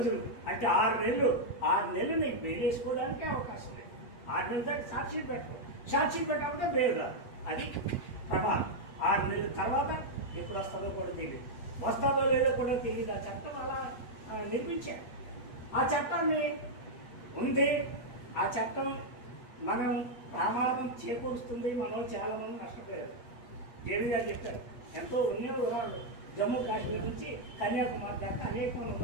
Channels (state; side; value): late; right; 8.2 ms